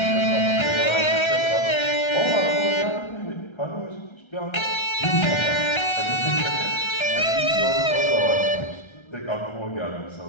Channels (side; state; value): right; late; 1.3 ms